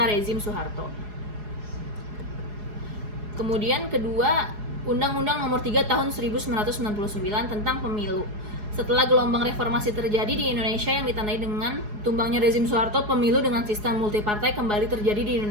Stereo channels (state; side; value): late; left; 4.8 ms